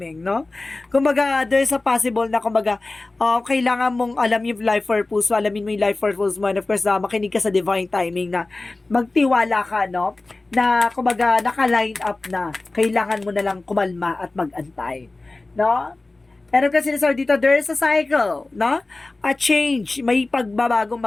no? Kumbaga, there's a possible na kumbaga, kailangan mong alam yung life purpose mo, alamin mo yung life purpose mo and of course, makinig ka sa divine timing na magtiwala ka, no? Na kumbaga, naka-line up na, kailangan mo na lang kumalma at mag-antay, no? And of course, sinasabi dito, there's a cycle, no? A change, may pagbabagong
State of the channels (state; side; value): quieter; right; 3.2 dB